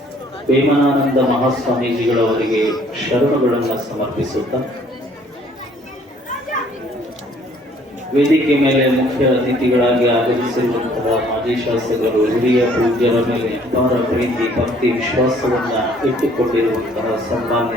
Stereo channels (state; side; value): normal; both; correlation 0.59